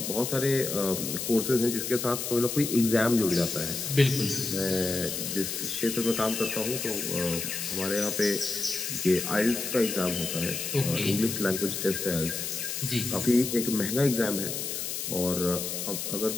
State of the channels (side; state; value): left; noise; hiss, 4 dB below the sound